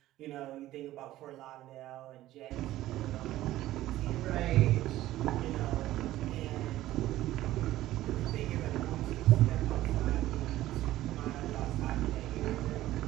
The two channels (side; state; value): left; quieter; 15.0 dB